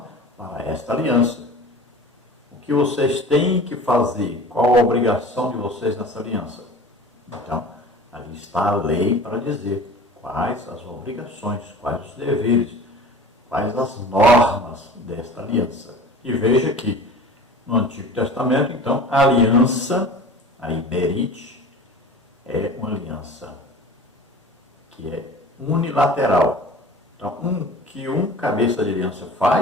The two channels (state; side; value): normal; both; correlation 0.40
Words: para esta aliança. O que vocês têm que fazer? Qual a obrigação de vocês nessa aliança? Então, ali está a lei para dizer quais as obrigações, quais os deveres, quais as normas desta aliança. E veja que no Antigo Testamento, então, a aliança, a Iberite, é uma aliança que é unilateral. Então, um cabeça de aliança